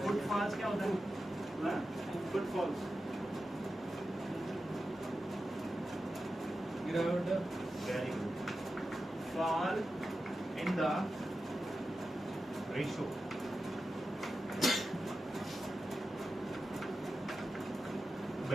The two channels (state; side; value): normal; both; correlation 0.92